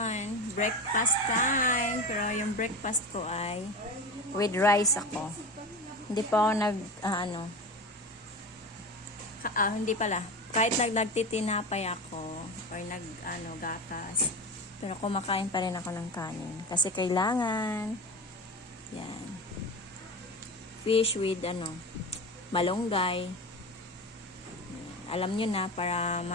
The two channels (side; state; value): both; normal; correlation 0.27